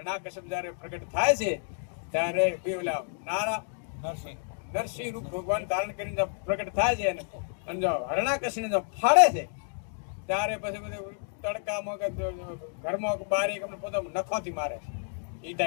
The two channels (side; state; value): right; silent; 58 dB below the other